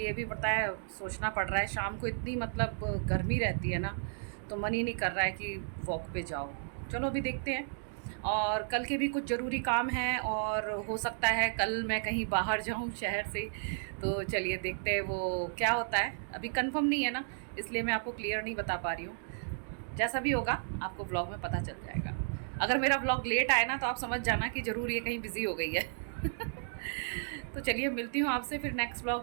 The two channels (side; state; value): left; silent; digital silence